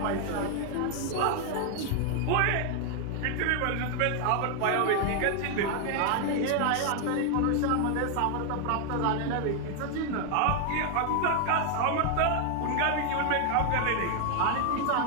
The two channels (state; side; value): different; both; correlation 0.01